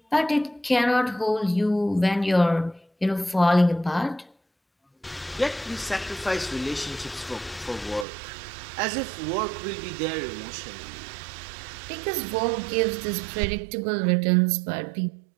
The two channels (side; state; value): left; drops out; at 8.1 s